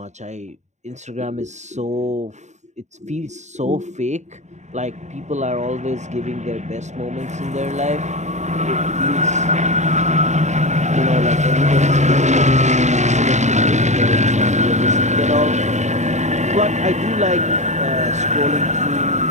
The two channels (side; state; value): left; late; 0.34 ms